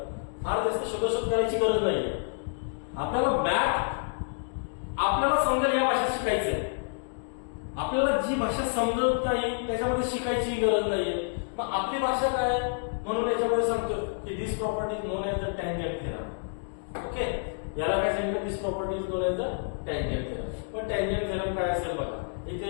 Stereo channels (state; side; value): silent; right; digital silence